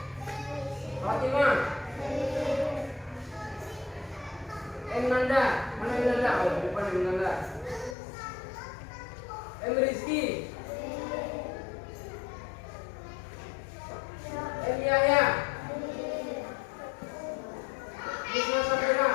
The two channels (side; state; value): right; drops out; at 8.0 s